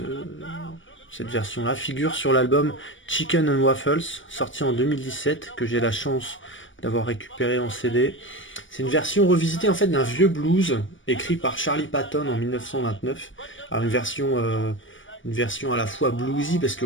version-là figure sur l'album Chicken and Waffles, sorti en 2017, que j'ai la chance d'avoir récupéré en CD. C'est une version revisitée en fait d'un vieux blues écrit par Charlie Patton en 1929. Alors une version à la fois bluesy parce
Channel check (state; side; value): late; right; 0.56 ms